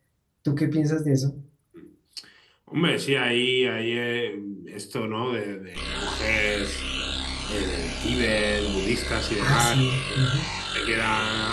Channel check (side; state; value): both; identical; correlation 1.00